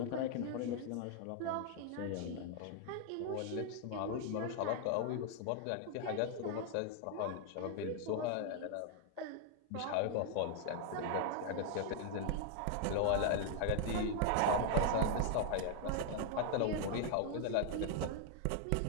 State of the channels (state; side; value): different; both; correlation 0.00